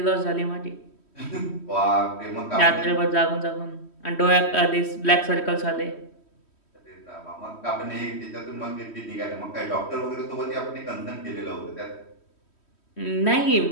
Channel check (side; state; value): right; late; 3.1 ms